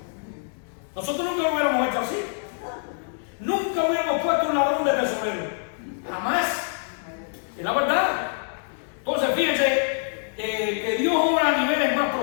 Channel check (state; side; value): silent; right; digital silence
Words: Nosotros nunca lo hubiéramos hecho así. Nunca hubiéramos puesto un ladrón de tesorero. Jamás. Es la verdad. Entonces fíjense que Dios obra a niveles más